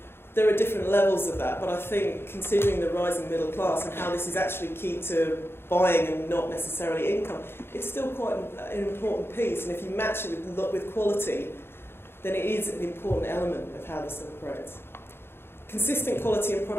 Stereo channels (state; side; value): late; right; 0.11 ms